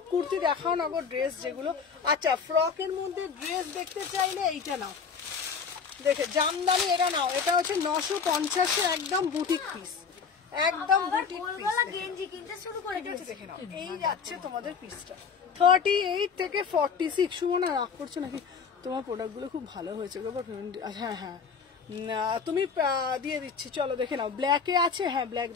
কুর্তি দেখাও না গো, ড্রেস যেগুলো। আচ্ছা ফ্রকের মধ্যে ড্রেস দেখতে চাইলে এইটা নাও, দেখে জামদানি এটা নাও, এটা হচ্ছে 950 একদম বুটিক পিস, একদম বুটিক পিস গেঞ্জি কিনতে শুরু করে দিয়েছে। দেখে নাও, এই যাচ্ছে তোমাদের পিসটা 38 থেকে 46। সুমনা রাগ করছো নাকি? তোমার প্রোডাক্ট গুলো খুব ভালো হয়েছে গো। হ্যাঁ হ্যাঁ তুমি দিয়ে দিচ্ছি, চলো দেখে নাও। ব্ল্যাকে আছে, হ্যাঁ ব্ল্যাক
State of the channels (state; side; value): quieter; right; 5.9 dB